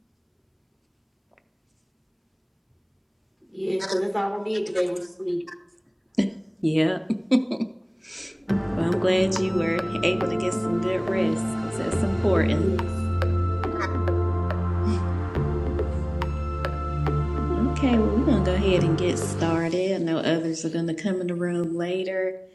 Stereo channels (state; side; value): identical; both; correlation 1.00